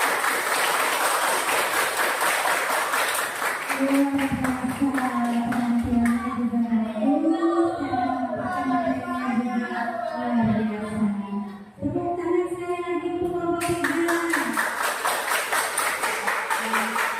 Tepuk tangan sekali lagi untuk kelompok 3.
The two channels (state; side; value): identical; both; correlation 1.00